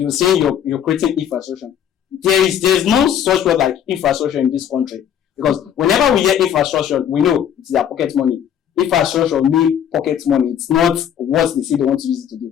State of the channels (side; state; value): right; quieter; 9.3 dB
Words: saying you're creating infrastructure. There's no such word like infrastructure in this country, because whenever we hear infrastructure, we know it's their pocket money. Infrastructure means pocket money. It's not what they say they want to use it to